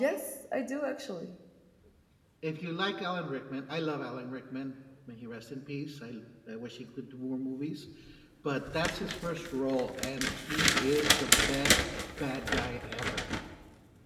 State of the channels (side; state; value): both; identical; correlation 1.00